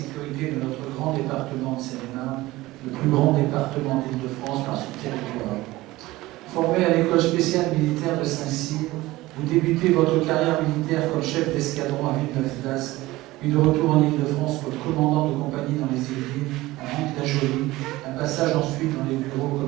de notre grand département de Seine-et-Marne, le plus grand département d'Île-de-France par son territoire. Formé à l'école spéciale militaire de Saint-Cyr, vous débutez votre carrière militaire comme chef d'escadron à Villeneuve-d'Ascq, puis de retour en Île-de-France comme commandant de compagnie dans les Yvelines, à Mantes-la-Jolie, un passage ensuite dans les bureaux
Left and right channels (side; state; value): left; quieter; 18.5 dB